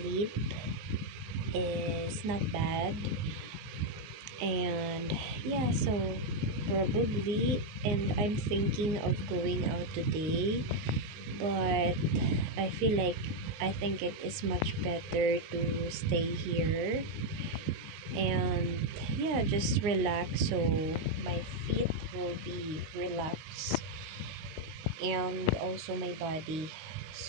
is not bad. And yeah, so probably, and I'm thinking of going out today, but I feel like I think it is much better to stay here and yeah, just relax so my feet will be relaxed and also my body.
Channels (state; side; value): late; left; 19 ms